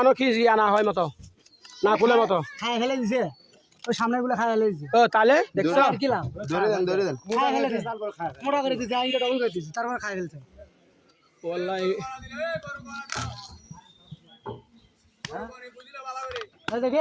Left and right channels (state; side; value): identical; both; correlation 1.00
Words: কি আনা হয় মতো না খুলে মতো খাই ফেলে দিছে ওই সামনে গুলো খাই ফেলে দিছে ও তাহলে দেখছো কি লাভ ধরে দেন খাই ফেলে দিছে মোটা করে দিছে আইনটা ডবল করে দিছে তারপর খাই ফেলছে ওয়াল্লাহি এই